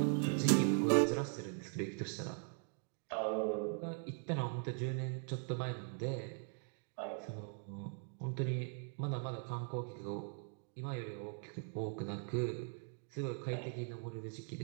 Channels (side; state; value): left; silent; 51 dB below the other